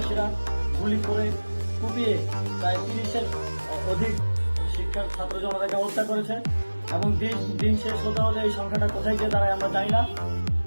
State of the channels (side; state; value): both; inverted; correlation -1.00